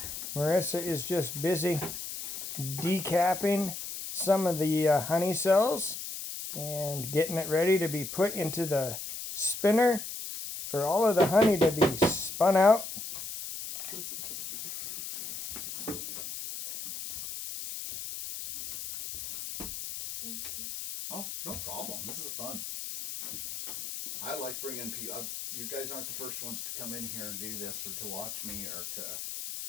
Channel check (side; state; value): left; noise; hiss, 7 dB below the sound